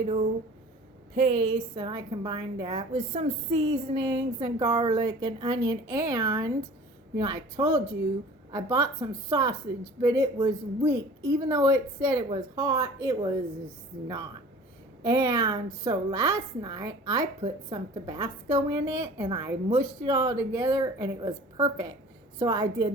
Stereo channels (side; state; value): both; normal; correlation 0.44